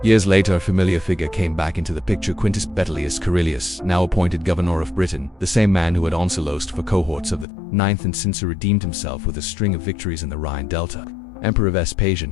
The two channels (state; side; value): drops out; right; at 7.5 s